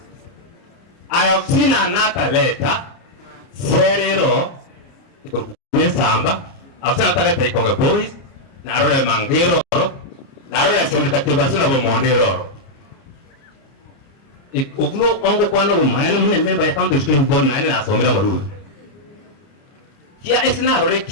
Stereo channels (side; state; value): right; late; 30 ms